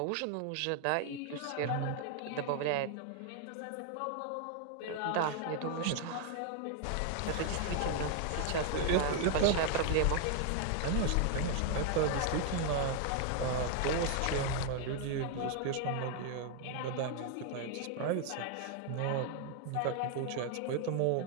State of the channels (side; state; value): both; different; correlation 0.00